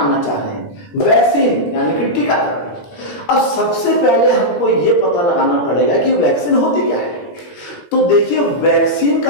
चाह रहे हैं, वैक्सीन यानी कि टीकाकरण। अब सबसे पहले हमको ये पता लगाना पड़ेगा कि वैक्सीन होती क्या है। तो देखिए, वैक्सीन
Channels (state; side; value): late; right; 18 ms